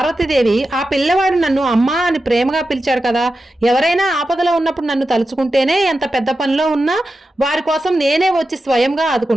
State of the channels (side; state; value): both; normal; correlation 0.91